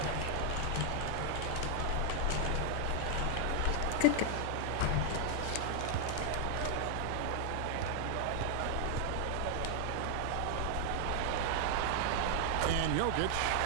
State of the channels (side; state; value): both; different; correlation 0.00